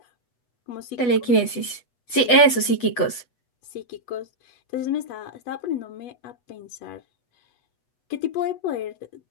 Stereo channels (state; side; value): late; right; 8.1 ms